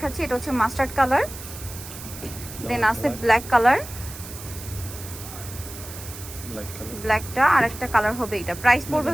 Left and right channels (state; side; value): noise; right; hiss, 13 dB below the sound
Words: এটা হচ্ছে মাস্টার্ড কালার, দেন আছে ব্ল্যাক কালার, ব্ল্যাক কালার ব্ল্যাকটা, আর একটা কালার হবে এটা। প্রাইস পড়বে